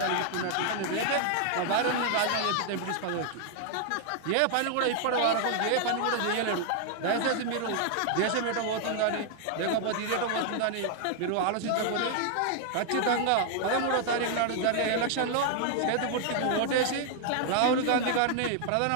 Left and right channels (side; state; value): both; different; correlation 0.00